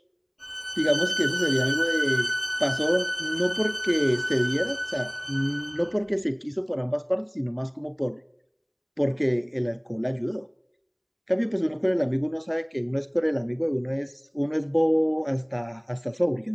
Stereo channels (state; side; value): identical; both; correlation 1.00